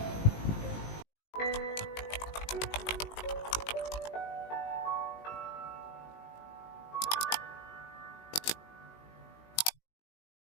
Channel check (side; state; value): right; late; 19 ms